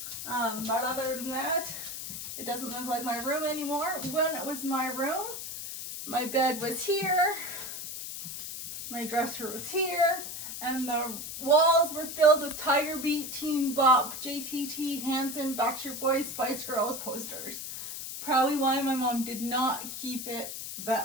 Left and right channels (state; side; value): noise; left; hiss, 7 dB below the sound